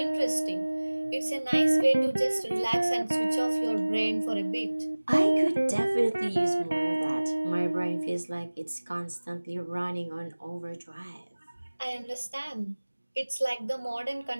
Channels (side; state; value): both; inverted; correlation -1.00